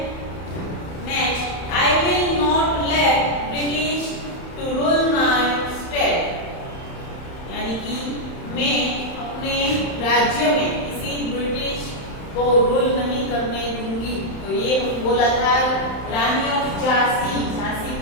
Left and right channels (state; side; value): late; right; 31 ms